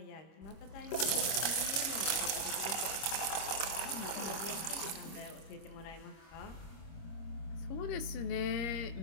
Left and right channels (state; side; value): late; right; 25 ms